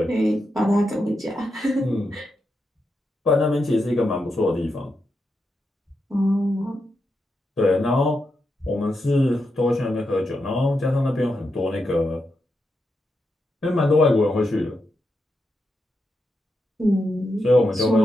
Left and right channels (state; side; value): normal; both; correlation 0.85